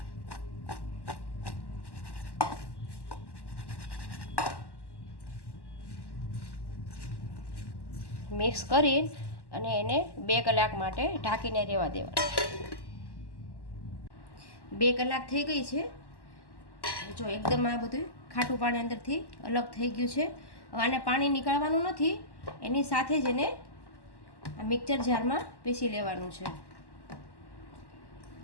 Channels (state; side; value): late; right; 1.1 ms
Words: મિક્સ કરી અને એને 2 કલાક માટે ઢાંકીને રહેવા દેવાનું. 2 કલાક થઈ ગઈ છે. જો એકદમ આ બધું ખાટું પાણી અંદરથી અલગ થઈ ગયું છે. હવે આને પાણી નીકાળવાનું નથી, એની સાથે જ એને આ મિક્સર જારમાં પીસી લેવાનું છે.